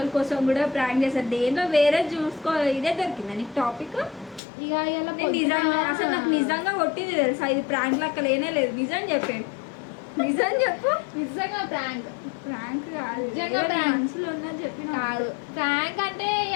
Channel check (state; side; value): drops out; right; at 4.4 s